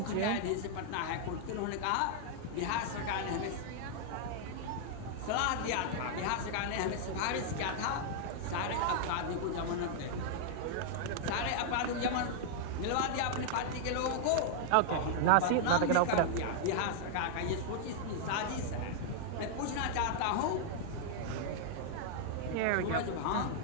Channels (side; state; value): both; different; correlation -0.01